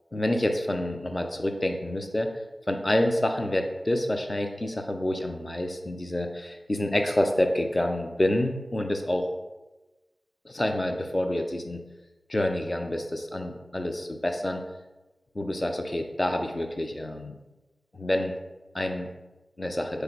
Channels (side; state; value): both; normal; correlation 0.97